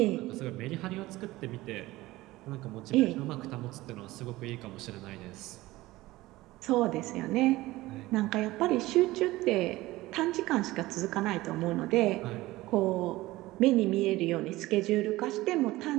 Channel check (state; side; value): quieter; left; 18.4 dB